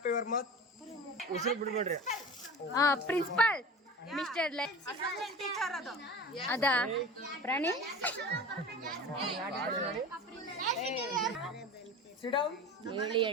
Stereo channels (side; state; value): both; normal; correlation 0.34